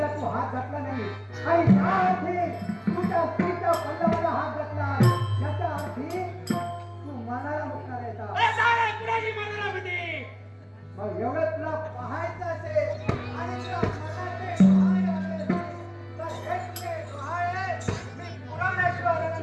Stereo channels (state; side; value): identical; both; correlation 1.00